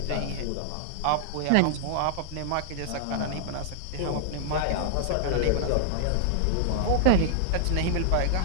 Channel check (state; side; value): different; both; correlation -0.01